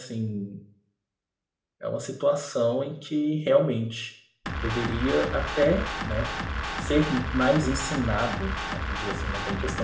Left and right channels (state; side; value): identical; both; correlation 1.00